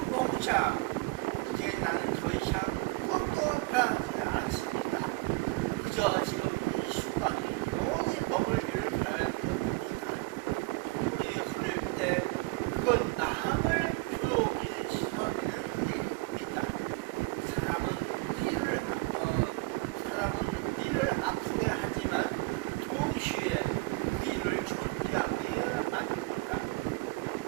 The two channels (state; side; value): quieter; left; 24.8 dB